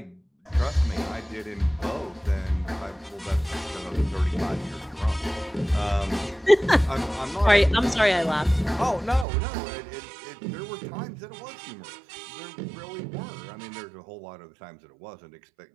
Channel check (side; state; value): left; drops out; at 9.2 s